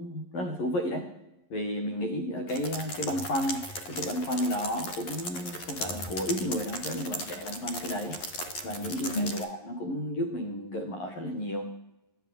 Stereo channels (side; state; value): right; late; 11 ms